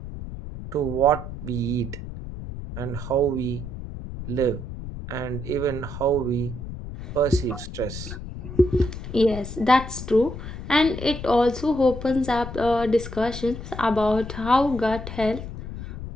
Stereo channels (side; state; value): left; noise; rumble, 9 dB below the sound